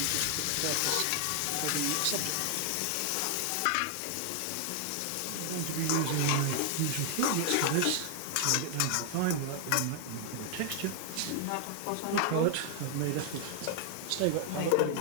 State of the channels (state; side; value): different; both; correlation 0.00